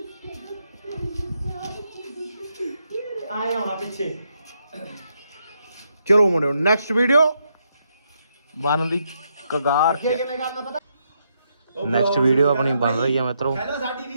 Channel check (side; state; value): both; inverted; correlation -0.78